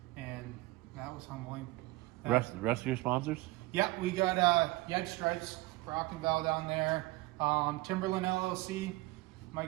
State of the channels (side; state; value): left; quieter; 20.6 dB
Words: and that was humbling. Rest of your sponsors? Yeah, we got Yed Stripes, Rock and Val down there, Timberland LLC,